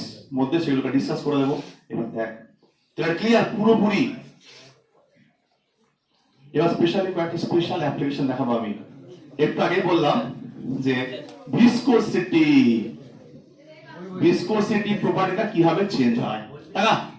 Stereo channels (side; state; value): both; identical; correlation 1.00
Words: মধ্যে সেগুলোকে ডিসকাস করে দেবো। এবার দেখ তোরা ক্লিয়ার পুরোপুরি। এবার স্পেশালি কয়েকটা স্পেশাল অ্যাপ্লিকেশন দেখাবো আমি। একটু আগে বললাম যে ভিসকোসিটি, ভিসকোসিটি প্রপার্টিটা কিভাবে চেঞ্জ হয়। তাই